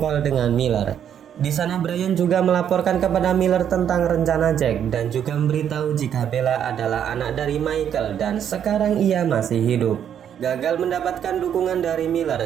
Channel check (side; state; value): left; quieter; 9.1 dB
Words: dengan Miller. Di sana Brian juga melaporkan kepada Miller tentang rencana Jack dan juga memberitahu jika Bella adalah anak dari Michael dan sekarang ia masih hidup. Gagal mendapatkan dukungan dari Miller,